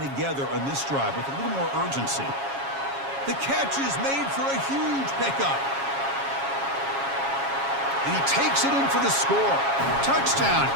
together on this drive with a little more urgency. The catch is made for a huge pickup. And he takes it in for the score. Touchdown,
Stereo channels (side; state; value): left; late; 7.3 ms